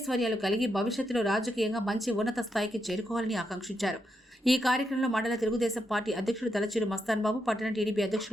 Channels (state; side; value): normal; both; correlation 0.83